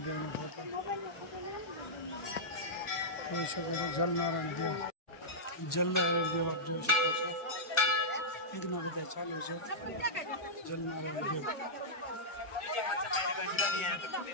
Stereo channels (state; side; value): late; right; 1.4 ms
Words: દેવનો ફોટો જોઈ શકો છો. જલનારાયણ દેવ. જલનારાયણ દેવ આપ જોઈ શકો છો. યજ્ઞ બધા ચાલુ છે. જલનારાયણ દેવ.